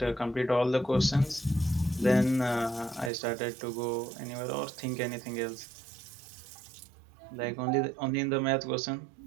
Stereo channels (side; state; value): left; drops out; at 3.1 s